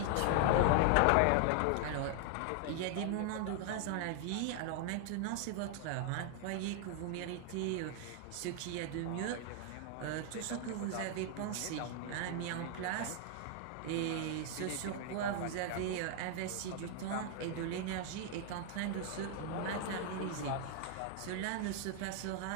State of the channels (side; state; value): both; different; correlation 0.00